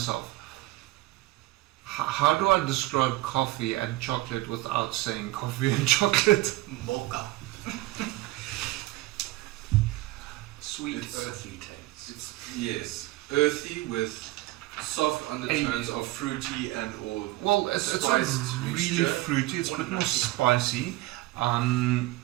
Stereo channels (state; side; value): quieter; left; 18.7 dB